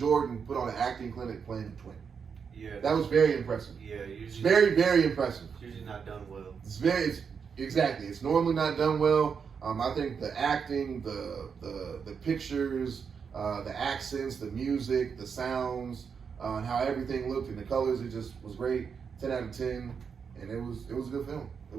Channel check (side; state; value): left; quieter; 6.3 dB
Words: put on an acting clinic playing the twin. Yeah. That was very impressive. Yeah, It's usually. very impressive. It's usually not done well. Exactly. It's normally not done well. I think the acting, the pictures, the accents, the music, the sounds, and how everything looked and the colors, it just was great. 10 out of 10, and it was a good film. It